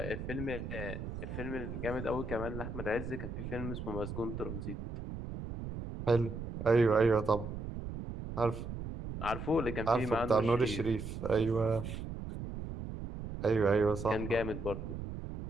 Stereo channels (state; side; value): noise; right; rumble, 7 dB below the sound